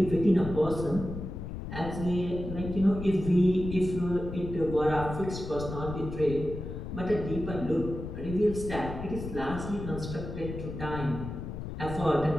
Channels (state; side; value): noise; left; rumble, 7 dB below the sound